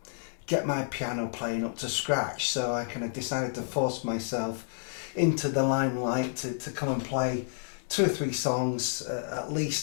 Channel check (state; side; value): silent; right; digital silence